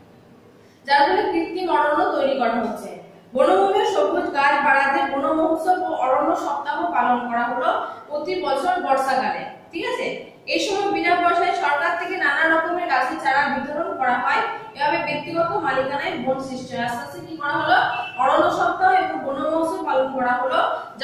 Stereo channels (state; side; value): identical; both; correlation 1.00